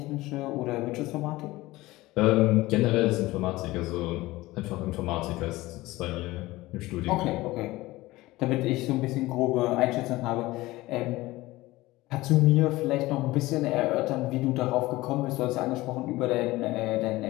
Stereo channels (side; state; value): right; quieter; 18.9 dB